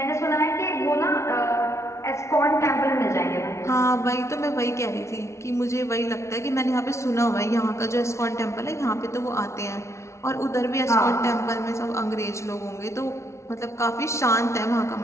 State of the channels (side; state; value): right; late; 0.13 ms